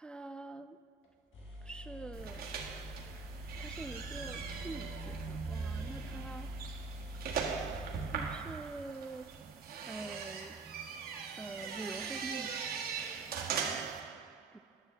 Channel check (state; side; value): quieter; left; 4.4 dB